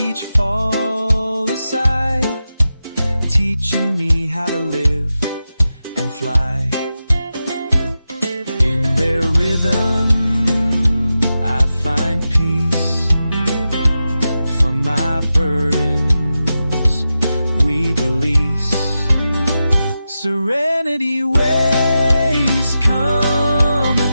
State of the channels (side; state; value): both; inverted; correlation -0.91